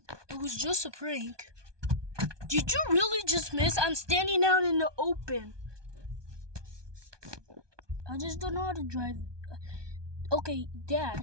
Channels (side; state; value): left; late; 1.2 ms